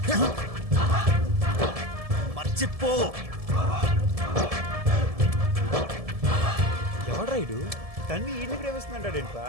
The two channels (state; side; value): late; left; 1.7 ms